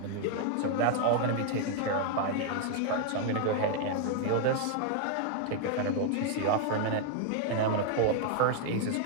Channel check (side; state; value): both; different; correlation 0.00